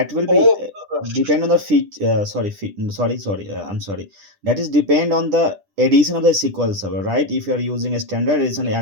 will be depend on the I'm sorry. That is depend on the edition of the SQL Server, right? If you are using a standard edition,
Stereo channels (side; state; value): left; late; 10 ms